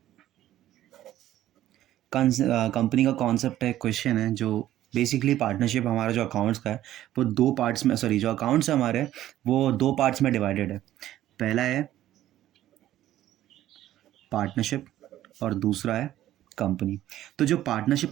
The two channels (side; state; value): left; quieter; 13.3 dB